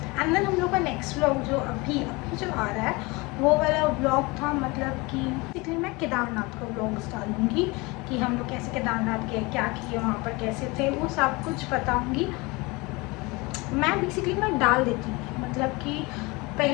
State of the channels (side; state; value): right; quieter; 24.9 dB